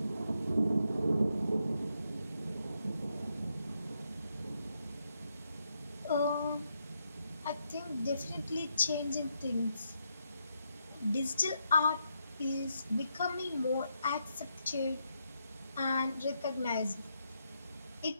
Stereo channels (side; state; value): both; inverted; correlation -0.80